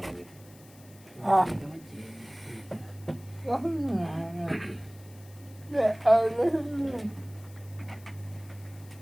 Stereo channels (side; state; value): left; noise; hiss, 24 dB below the sound